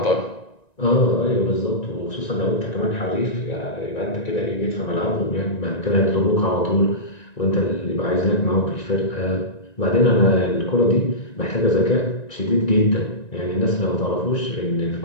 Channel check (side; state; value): right; late; 1.9 ms